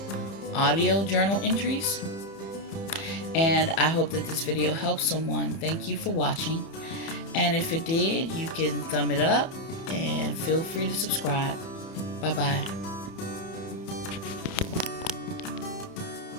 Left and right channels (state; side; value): late; right; 30 ms